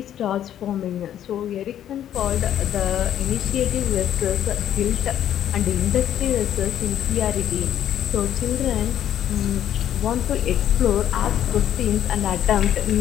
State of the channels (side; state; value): right; quieter; 10.8 dB